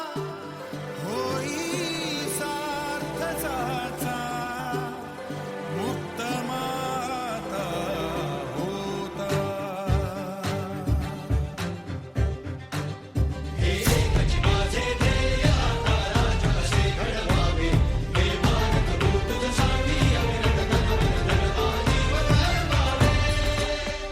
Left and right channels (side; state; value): both; identical; correlation 1.00